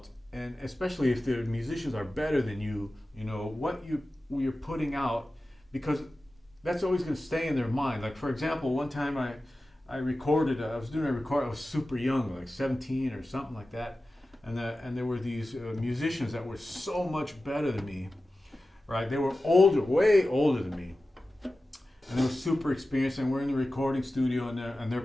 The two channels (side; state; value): both; normal; correlation 0.94